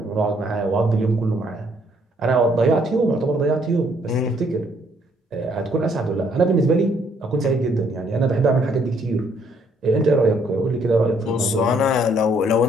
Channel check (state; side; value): normal; both; correlation 0.67